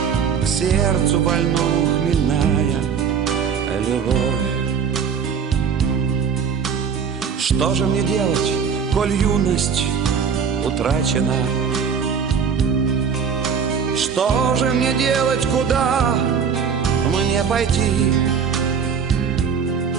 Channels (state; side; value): quieter; left; 6.7 dB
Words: к сердцу больному хмельная любовь. Что же мне делать, коль юность утрачена? Что же мне делать, куда мне пойти?